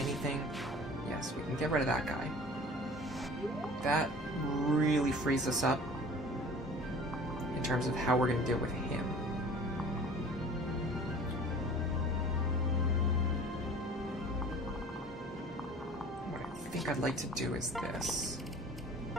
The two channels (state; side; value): normal; both; correlation 0.44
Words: yes, we can get rid of that guy. That really frees us up in terms of how we're going to deal with him. What I think I'd like to do is this.